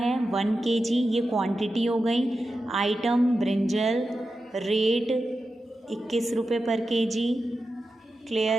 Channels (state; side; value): normal; both; correlation 0.91